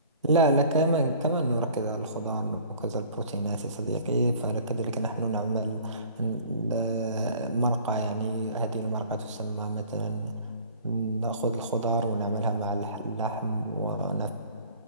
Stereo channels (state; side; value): inverted; both; correlation -0.49